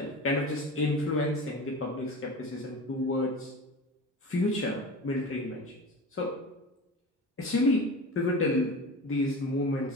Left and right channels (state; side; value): normal; both; correlation 0.32